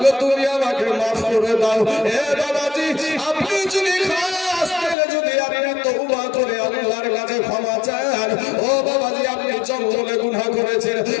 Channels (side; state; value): right; drops out; at 5.0 s